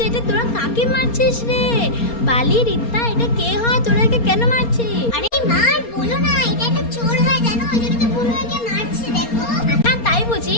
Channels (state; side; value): late; right; 4.3 ms